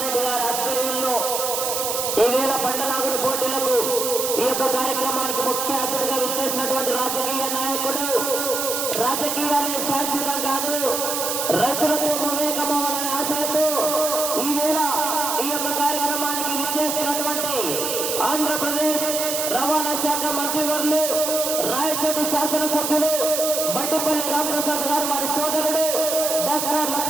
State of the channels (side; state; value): right; noise; hiss, 1 dB below the sound